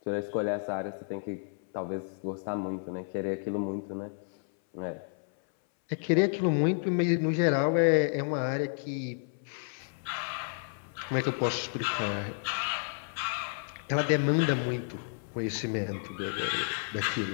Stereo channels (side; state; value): right; silent; 57 dB below the other